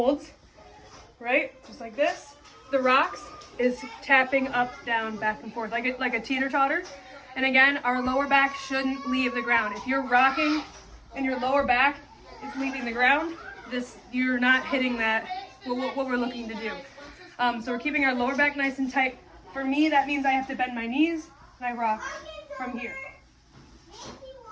right? Just like this. The rocks is tapping up, down, back and forth, like a teeter-totter. And again, our lower back shouldn't leave the ground. If you're rocking and your lower back is leaving the ground, you're not hitting that, what we're looking to do. So we're keeping our lower back nice and tight. For me, that means I have to bend my knees and I rock from here.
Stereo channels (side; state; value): both; identical; correlation 1.00